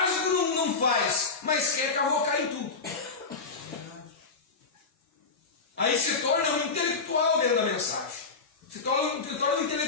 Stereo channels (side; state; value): right; quieter; 4.5 dB